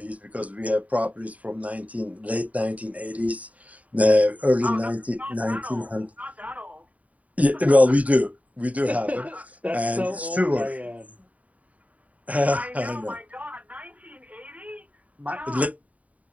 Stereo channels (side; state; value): left; late; 0.070 ms